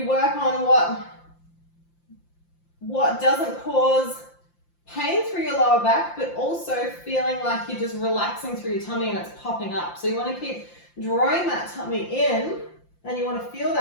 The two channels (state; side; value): late; right; 5.8 ms